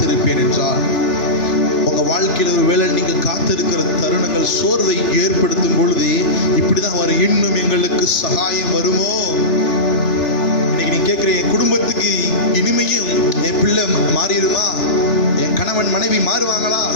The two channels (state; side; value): late; right; 2.9 ms